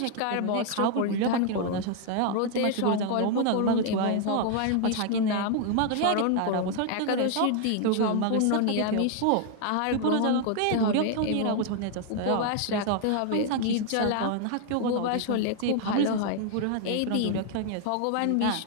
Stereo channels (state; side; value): different; both; correlation 0.00